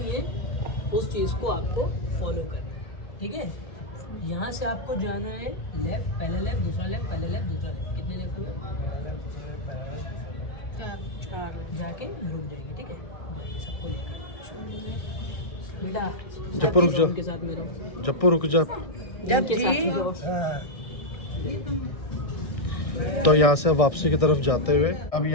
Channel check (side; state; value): right; late; 1.6 ms